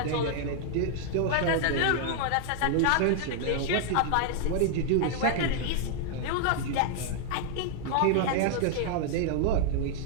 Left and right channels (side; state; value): both; different; correlation 0.00